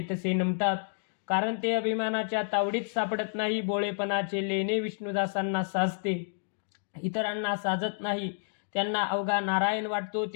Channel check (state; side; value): silent; right; digital silence